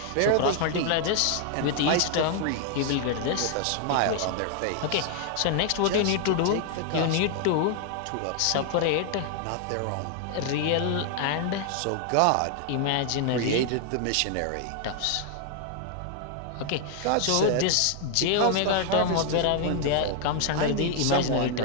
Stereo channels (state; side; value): different; both; correlation 0.00